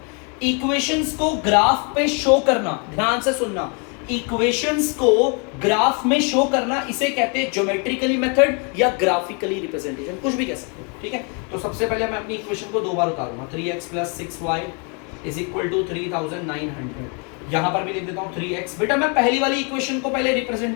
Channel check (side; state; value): right; quieter; 35.8 dB